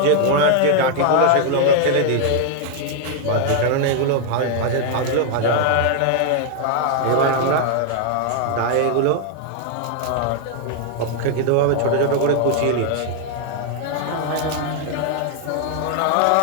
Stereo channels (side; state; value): both; different; correlation 0.00